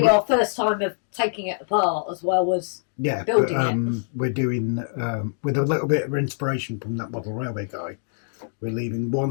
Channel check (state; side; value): silent; right; digital silence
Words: our first time of taking it apart as well as building it. We're doing, with a little bit of inspiration from that model railway guy, we're leaving